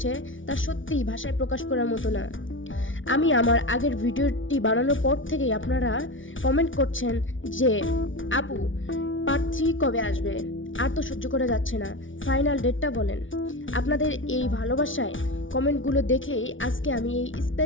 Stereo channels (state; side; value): late; right; 0.56 ms